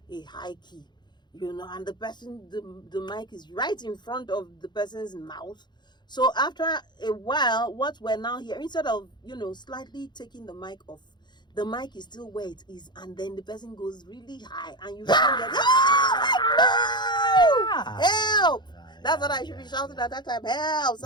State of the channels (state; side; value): late; right; 0.21 ms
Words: a high key, and the person, the mic is right in front of the person's mouth. So after a while, what we're now here, instead of slightly taking the mic off, the mic is still where it is, and then the person goes really high, and you can't get help! That's what I should be shouting at that time. Help!